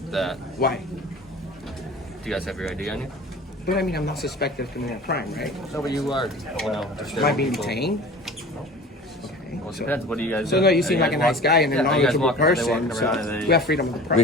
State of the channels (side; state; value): both; normal; correlation 0.40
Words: that. Why? Do you guys have your ID on you? But I mean, I'm not suspected of committing a crime, right? No, but you are. Am I being detained? Well, it depends. What do you guys So do? no, you seem like a nice guy and a knowledgeable person. They So walk around, we have freedom of the